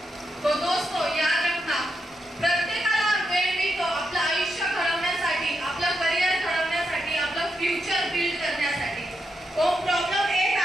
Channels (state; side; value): normal; both; correlation 0.83